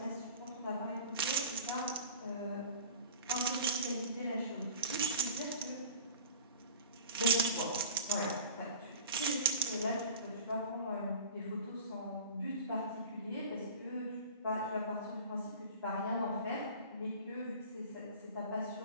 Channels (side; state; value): both; inverted; correlation -0.40